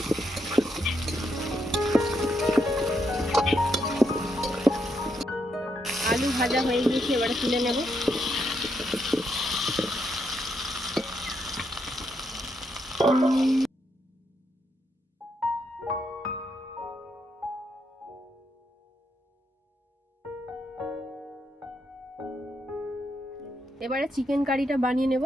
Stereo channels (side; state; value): both; normal; correlation 0.78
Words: আলু ভাজা হয়ে গিয়েছে, এবারে তুলে নেব। এবারে চিকেন কারিটা বানিয়ে নেব,